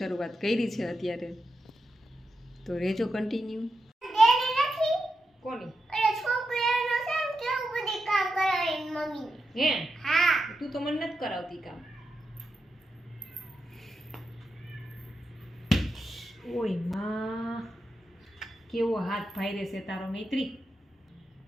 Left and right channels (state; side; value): normal; both; correlation 0.87